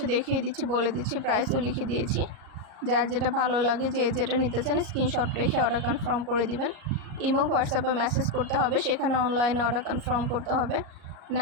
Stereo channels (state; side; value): late; left; 38 ms